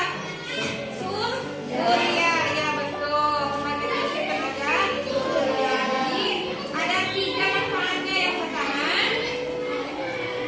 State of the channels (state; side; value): identical; both; correlation 1.00